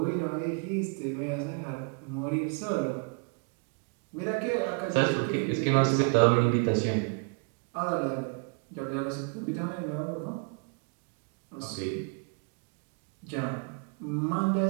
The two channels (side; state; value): left; quieter; 37.8 dB